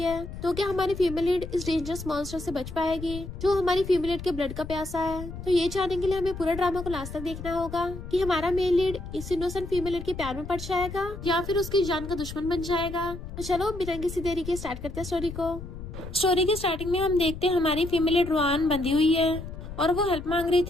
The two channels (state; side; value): noise; left; rumble, 10 dB below the sound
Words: तो क्या हमारी फीमेल लीड इस डेंजरस मॉन्स्टर से बच पाएगी जो हमारी फीमेल लीड के ब्लड का प्यासा है? तो ये जानने के लिए हमें पूरा ड्रामा को लास्ट तक देखना होगा कि हमारा मेल लीड इस इनोसेंट फीमेल लीड के प्यार में पड़ जाएगा या फिर उसकी जान का दुश्मन बन जाएगा। तो चलो बिना किसी देरी के स्टार्ट करते हैं स्टोरी को। स्टोरी की स्टार्टिंग में हम देखते हैं हमारी फीमेल लीड रुआन बंधी हुई है और वो हेल्प मांग रही